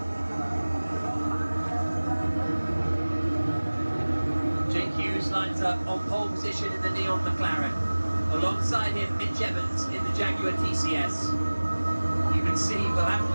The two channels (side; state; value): both; inverted; correlation -1.00